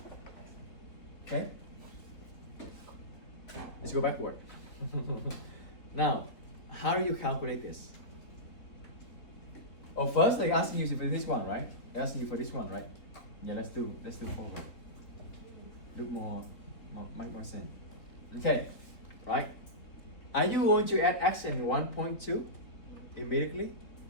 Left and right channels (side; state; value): right; late; 3.9 ms